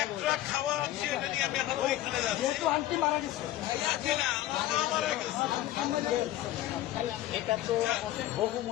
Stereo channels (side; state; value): right; quieter; 14.4 dB